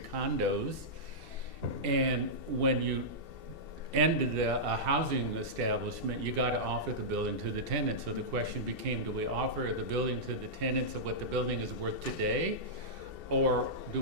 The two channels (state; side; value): late; left; 2.7 ms